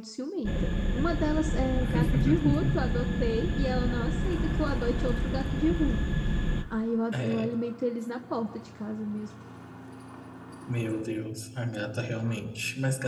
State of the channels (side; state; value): both; identical; correlation 1.00